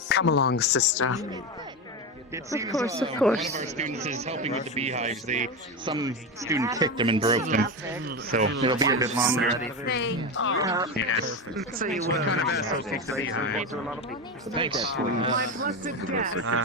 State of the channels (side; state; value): both; normal; correlation 0.17